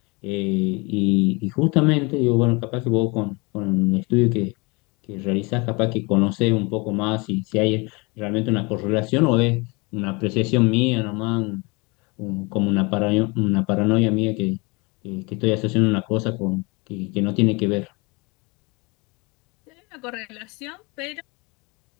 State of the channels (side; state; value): right; quieter; 27.9 dB